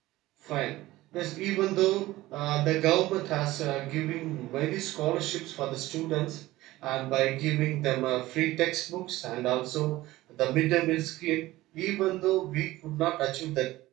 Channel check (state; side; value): quieter; left; 17.5 dB